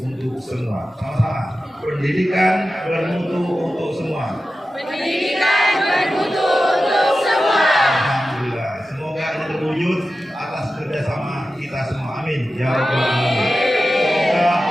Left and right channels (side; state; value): both; normal; correlation 0.93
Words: untuk semua. Sama-sama, pendidikan bermutu untuk semua. Pendidikan bermutu untuk semua. Alhamdulillah. Semoga ini terwujud atas kerjasama kita semua. Amin. Ya Rabbal Alamin. Semoga